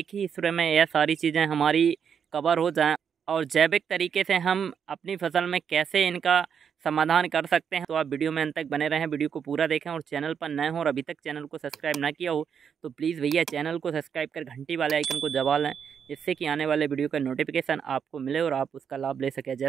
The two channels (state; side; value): quieter; left; 7.4 dB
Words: ही स्प्रे में यह सारी चीज़ें हमारी कवर हो जाएं और जैविक तरीके से हम अपनी फसल में कैसे इनका समाधान कर सकते हैं। तो आप वीडियो में अंत तक बने रहें, वीडियो को पूरा देखें और चैनल पर नए हों और अभी तक चैनल को सब्सक्राइब ना किया हो तो प्लीज़ भैया चैनल को सब्सक्राइब कर घंटी वाले आइकन को दबा लें, जिससे कि आने वाले वीडियो का नोटिफिकेशन आपको मिले और आप उसका लाभ ले सकें।